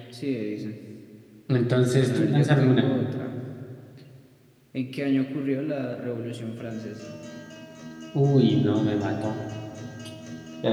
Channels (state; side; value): identical; both; correlation 1.00